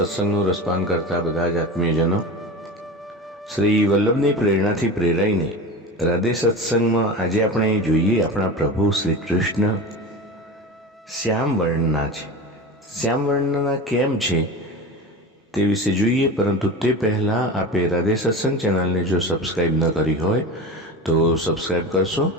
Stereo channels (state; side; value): normal; both; correlation 0.30